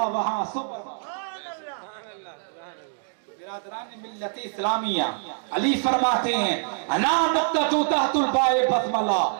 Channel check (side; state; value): left; silent; digital silence